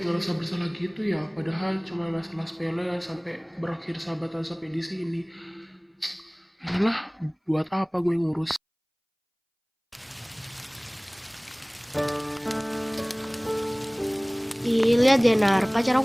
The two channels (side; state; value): both; identical; correlation 1.00